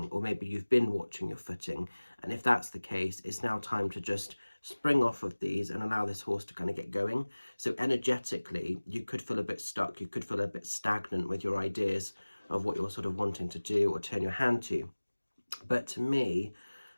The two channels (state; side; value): inverted; both; correlation -1.00